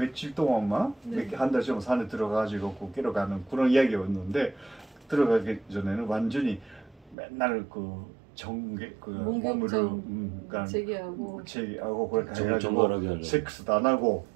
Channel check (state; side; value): drops out; left; at 7.2 s